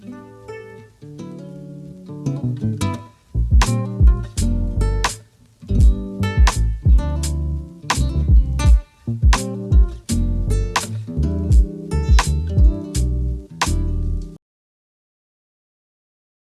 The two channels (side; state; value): both; identical; correlation 1.00